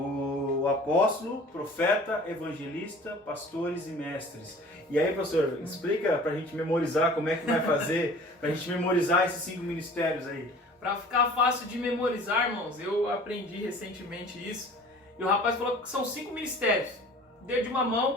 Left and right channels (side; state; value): both; normal; correlation 0.46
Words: apóstolo, profeta, evangelista, pastores e mestres. E aí, pastor, explica pra gente memorizar como é que vai fazer, pra gente memorizar esses 5 ministérios aí. Para ficar fácil de memorizar, irmãos, eu aprendi recentemente isso. E o rapaz falou que são 5 ministérios. Dedo de uma